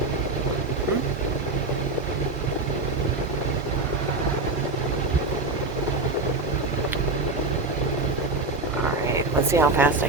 Alright, let's see how fast I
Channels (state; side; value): quieter; left; 3.1 dB